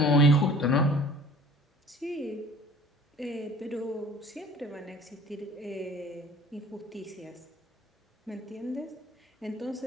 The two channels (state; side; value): normal; both; correlation 0.48